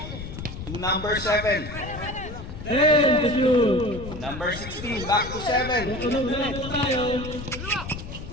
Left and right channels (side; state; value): left; noise; rumble, 10 dB below the sound